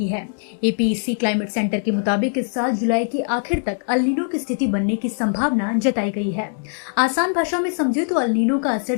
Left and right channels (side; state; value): right; silent; 65 dB below the other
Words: है। एपीईसी क्लाइमेट सेंटर के मुताबिक इस साल जुलाई के आखिर तक अल नीनो की स्थिति बनने की संभावना जताई गई है। आसान भाषा में समझे तो अल नीनो का असर